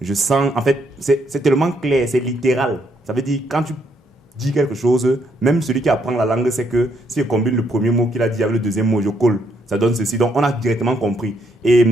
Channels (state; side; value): normal; both; correlation 0.73